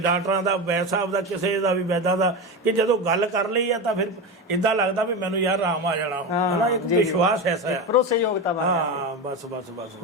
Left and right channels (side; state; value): both; normal; correlation 0.20